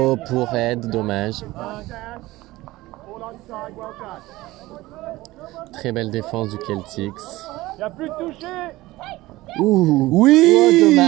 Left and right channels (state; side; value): quieter; left; 18.5 dB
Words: pour Ed, dommage. Très belle défense du Celtics. Il n'y a plus de toucher. Ouh, oui, oh,